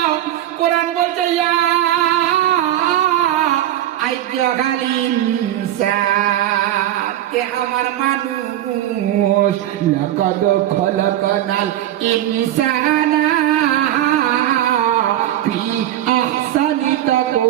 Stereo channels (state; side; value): quieter; left; 12.8 dB